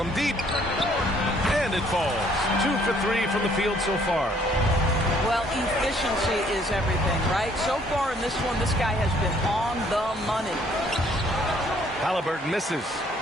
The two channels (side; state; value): both; normal; correlation 0.63